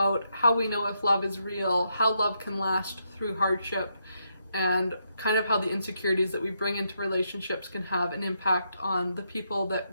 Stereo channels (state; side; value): inverted; both; correlation -0.80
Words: how we know if love is real, how love can last through hardship, and kind of how the insecurities that we bring into relationships can have an impact on the people that